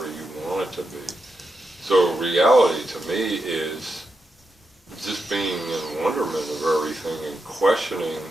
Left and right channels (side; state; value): both; normal; correlation 0.87